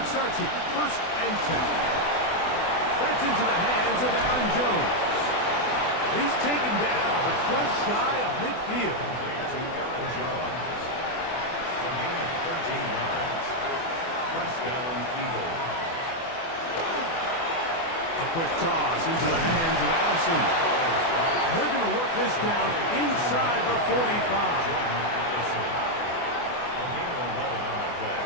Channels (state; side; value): late; right; 24 ms